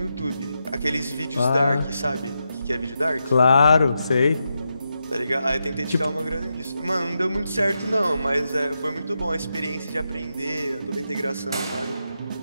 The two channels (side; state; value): both; inverted; correlation -0.86